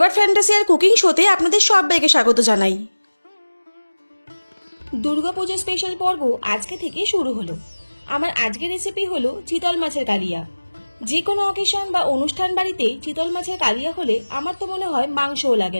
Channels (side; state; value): both; inverted; correlation -1.00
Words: fantasy और कुकिंग शोते आपनादेर सबाइके स्वागत जानाई। दुर्गापूजा स्पेशल पर्व आज के थेके शुरू हलो। आमार आजकेर रेसिपि हलो चितल माछेर कालिया। जे कोनो अकेशन बा अनुष्ठान बाड़ीते चितल माछेर कालिया होले आमार तो मने हय मांसও